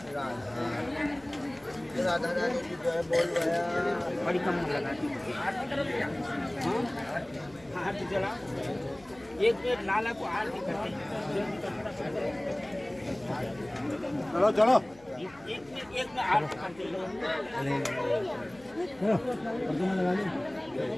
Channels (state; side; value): noise; left; hum, 25 dB below the sound